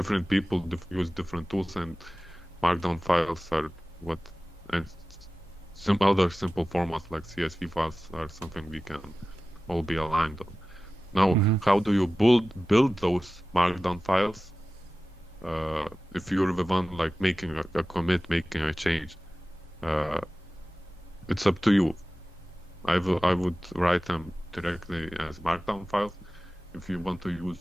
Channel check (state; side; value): normal; both; correlation 0.96